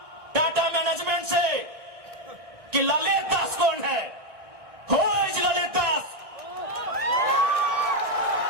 टाटा मैनेजमेंट से कि ललित दास कौन है? Who is Lalit Das?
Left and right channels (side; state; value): left; late; 1.6 ms